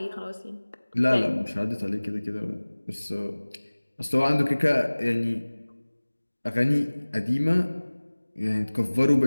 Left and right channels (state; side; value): inverted; both; correlation -1.00